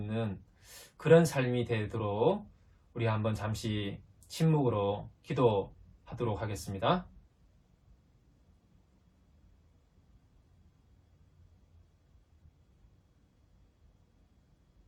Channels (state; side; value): identical; both; correlation 1.00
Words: 그런 삶이 되도록 우리 한번 잠시 침묵으로 기도하도록 하겠습니다.